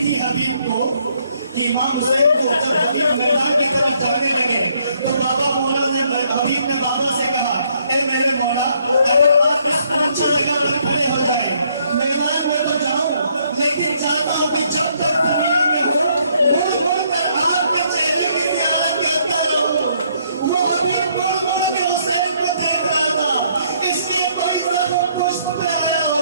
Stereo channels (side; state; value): both; inverted; correlation -0.68